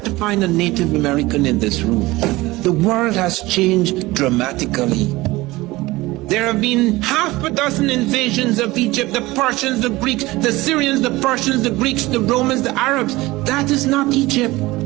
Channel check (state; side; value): quieter; left; 19.8 dB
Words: to find a Native American in this room. The world has changed dramatically. There have been half a dozen invasions of Egypt, the Persians, the Greeks, the Syrians, the Persians, the Greeks, the Romans, the Arabs. That is not Egypt.